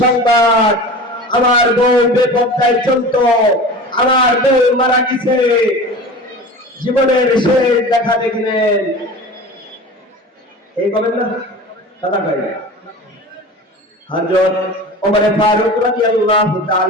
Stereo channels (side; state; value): both; normal; correlation 0.35